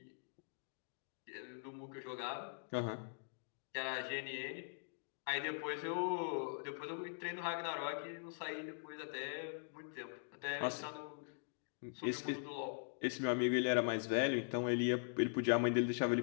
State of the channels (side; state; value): right; silent; digital silence